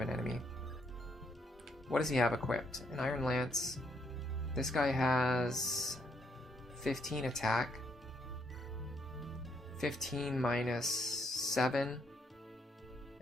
an enemy. What does he have equipped? An Iron Lance. This guy has 15 attack. 15 minus 7.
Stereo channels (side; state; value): both; normal; correlation 0.73